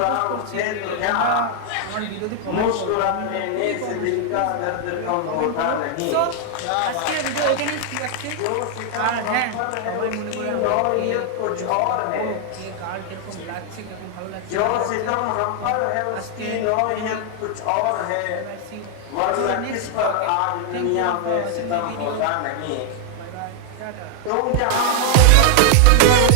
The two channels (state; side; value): different; both; correlation 0.00